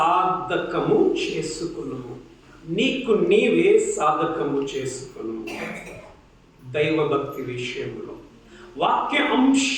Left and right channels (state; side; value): identical; both; correlation 1.00